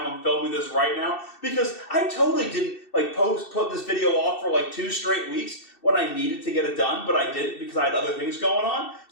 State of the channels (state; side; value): late; right; 2.7 ms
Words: I'm filming this right now, because I totally didn't put this video off for like 2 straight weeks when I needed to get it done, but I didn't because I had other things going on.